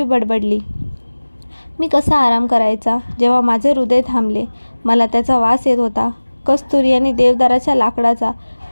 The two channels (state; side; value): inverted; both; correlation -1.00